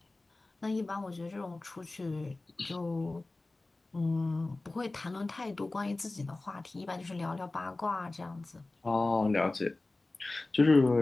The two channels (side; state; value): right; quieter; 3.1 dB